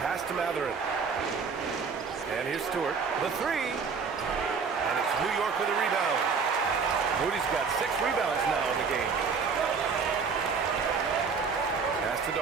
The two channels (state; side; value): quieter; left; 5.4 dB